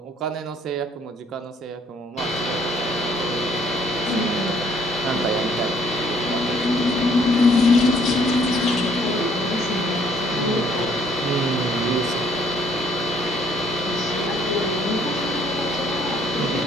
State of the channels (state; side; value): normal; both; correlation 0.62